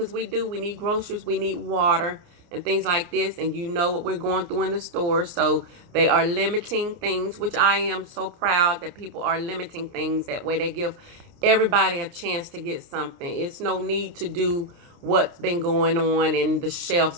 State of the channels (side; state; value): left; late; 29 ms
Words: we need groceries, we need water and things like this, and what we're going through in the store. So they are limiting things, which I am so proud that people are limiting things. That way they give everybody a chance to get something. It's no need to do what's been going on and the